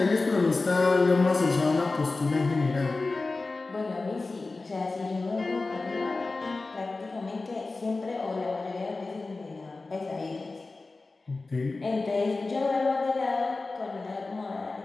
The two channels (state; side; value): quieter; right; 3.5 dB